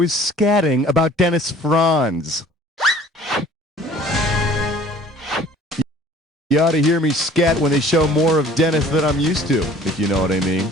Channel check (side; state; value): both; normal; correlation 0.51